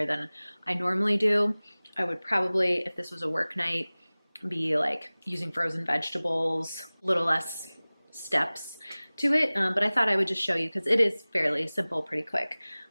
than I normally do. I would probably, if this was a work night, be like using frozen vegetables, a little less steps to it. But I thought I would just show you because it is fairly simple, pretty quick.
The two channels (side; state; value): both; inverted; correlation -0.99